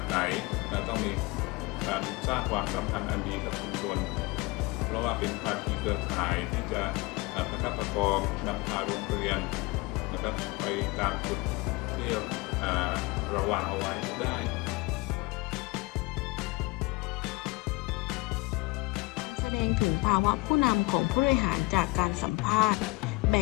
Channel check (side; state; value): right; quieter; 24.7 dB